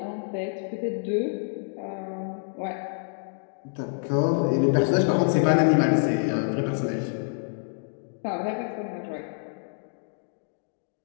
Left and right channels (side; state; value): right; silent; digital silence